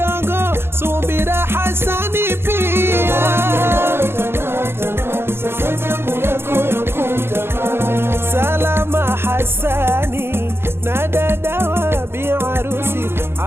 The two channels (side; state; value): left; late; 0.11 ms